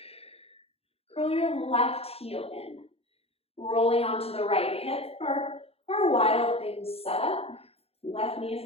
Curl your left heel in. Rolling onto the right hip for our wild thing setup. Left knee is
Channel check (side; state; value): right; late; 0.29 ms